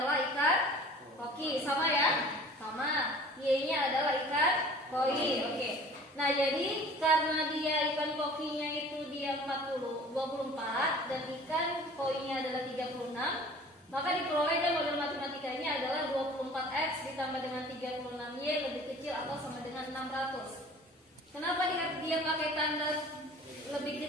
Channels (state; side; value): normal; both; correlation 0.46